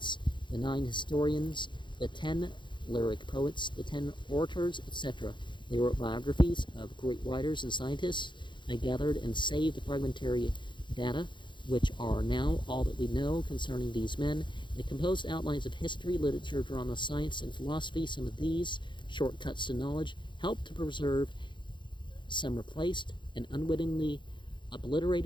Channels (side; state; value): right; late; 0.23 ms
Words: the 9 historians, the 10 lyric poets, the 10 orators, etc. They wrote biographies of great writers and scientists. They gathered and saved the fragmentary data, which are now all that we know concerning these men. They composed outlines of history, literature, drama, science, and philosophy. Some of these shortcuts to knowledge helped to preserve, some replaced, and unwittingly